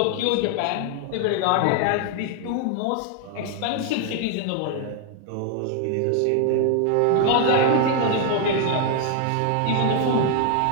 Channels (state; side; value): different; both; correlation 0.00